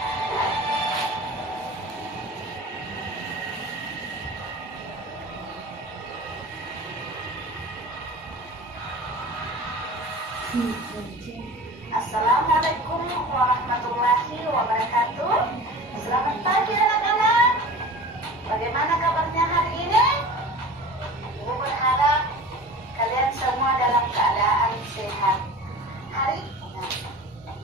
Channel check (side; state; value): both; normal; correlation 0.37